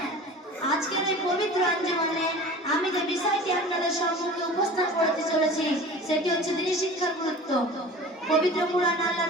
আজকের এই পবিত্র আঞ্জুমানে আমি যে বিষয়টি আপনাদের সম্মুখে উপস্থাপন করতে চলেছি সেটি হচ্ছে দ্বীনি শিক্ষার গুরুত্ব। পবিত্র কুরআন আল্লাহ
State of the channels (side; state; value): both; normal; correlation 0.40